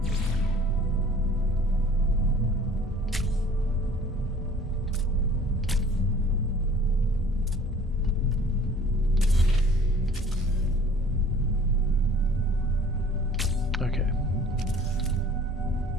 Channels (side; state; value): both; normal; correlation 0.50